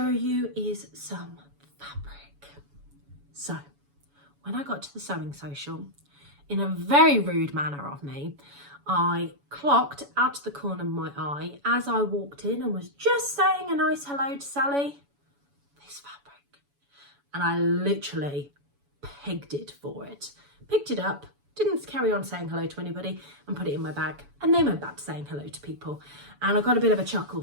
you is some fabric. So, when I got to the sewing social, in a very rude manner of me, I clocked out of the corner of my eye as I walked in and was just saying a nice hello to Sally, this fabric. And I literally pegged it for it. Picked it up, didn't carry on saying hello to anybody, and put it in my bag, and then went back to saying hello to people, and I got a bit of a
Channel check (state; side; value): late; left; 7.0 ms